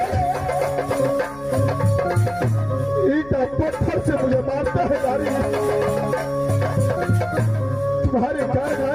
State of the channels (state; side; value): noise; left; hum, 22 dB below the sound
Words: ईटा पत्थर से मुझे मारता है नारी। तुम्हारे कारण